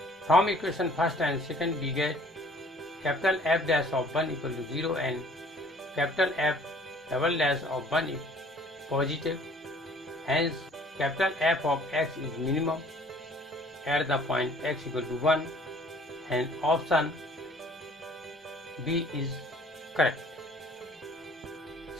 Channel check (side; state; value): both; normal; correlation 0.54